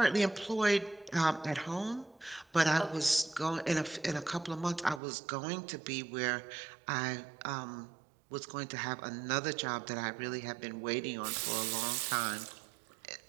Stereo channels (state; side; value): drops out; left; at 5.0 s